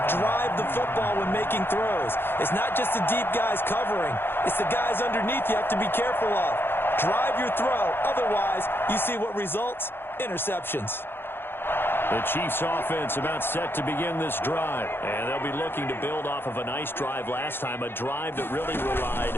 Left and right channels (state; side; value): late; right; 0.10 ms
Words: Drive the football when making throws. It's not just the deep guys covering. It's the guys underneath you have to be careful of. Drive your throw. Otherwise, you see what results? Interceptions. The Chiefs offense about set to begin this drive. And they'll be looking to build off of a nice drive last time, a drive that really relied